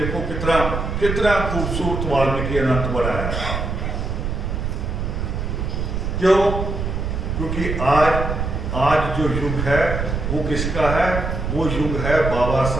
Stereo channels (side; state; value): right; noise; rumble, 2 dB below the sound